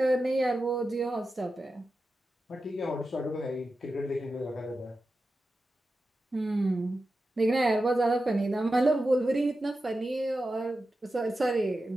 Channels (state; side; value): normal; both; correlation 0.91